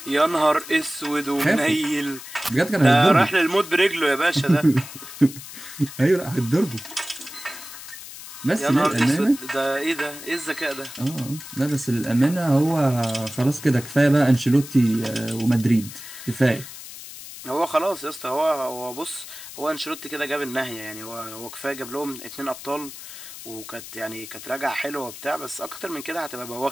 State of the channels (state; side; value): noise; left; hiss, 13 dB below the sound